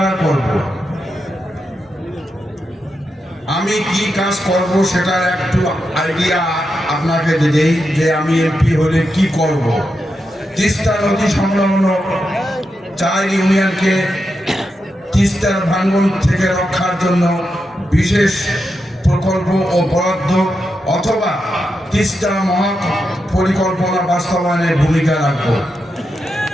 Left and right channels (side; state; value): both; normal; correlation 0.86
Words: করব। আমি কি কাজ করব সেটার একটু আইডিয়া আপনাকে দেই যে আমি এমপি হলে কি করব। তিস্তা নদী সংলগ্ন 4 ইউনিয়নকে তিস্তার ভাঙন থেকে রক্ষার জন্য বিশেষ প্রকল্প ও বরাদ্দ অথবা তিস্তা মহা পরিকল্পনা বাস্তবায়নে ভূমিকা রাখব।